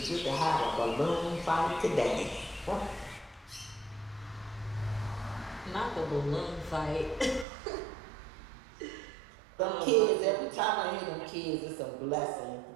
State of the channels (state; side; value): drops out; left; at 7.5 s